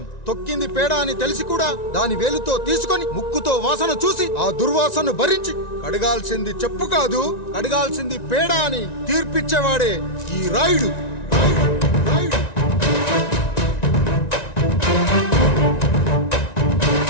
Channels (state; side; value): late; right; 1.9 ms